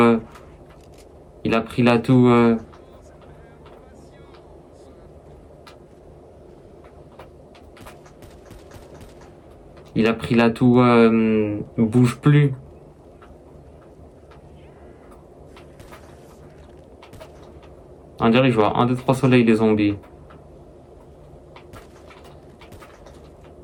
Il a pris l'atout. Il a pris l'atout. Bouge plus. On dirait que je vois 1, 2, 3 soleils les zombies.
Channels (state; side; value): identical; both; correlation 1.00